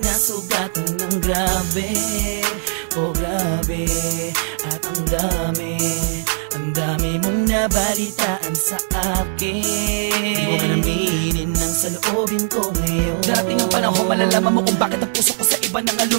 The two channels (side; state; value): left; silent; digital silence